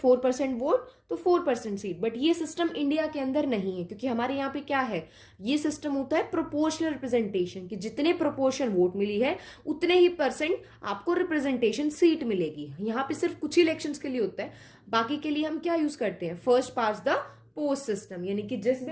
वोट तो 4% सीट। बट ये सिस्टम इंडिया के अंदर नहीं है, क्योंकि हमारे यहाँ पे क्या है, ये सिस्टम होता है प्रोपोर्शनल रिप्रेजेंटेशन, कि जितने प्रोपोर्शन वोट मिली है उतने ही परसेंट आपको रिप्रेजेंटेशन सीट मिलेगी। यहाँ पे सिर्फ कुछ ही इलेक्शंस के लिए होता है, बाकी के लिए हम क्या यूज करते हैं, first pass the post system, यानी कि जिस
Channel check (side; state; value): both; identical; correlation 1.00